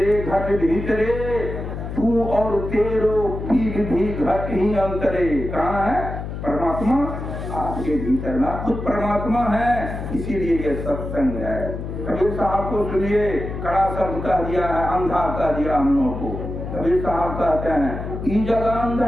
घट भीतरे, तू और तेरो पीग भी घट ही अंतरे। कहाँ है परमात्मा? आपके भीतर ना खुद परमात्मा है, इसीलिए ये सत्संग है। कबीर साहब को सुनिए, कड़ा शब्द कह दिया है, अंधा कह दिया हम लोगों को। कबीर साहब कहते हैं ई जगह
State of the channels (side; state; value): left; noise; hum, 7 dB below the sound